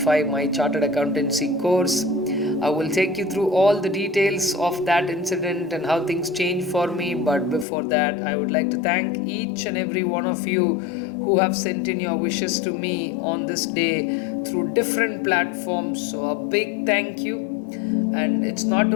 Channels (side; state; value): right; drops out; at 7.7 s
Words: my chartered accountancy course. I will take you through all the details of that incident and how things changed for me. But before that, I would like to thank each and every one of you who have sent in your wishes to me on this day through different platforms. So, a big thank you. And it's not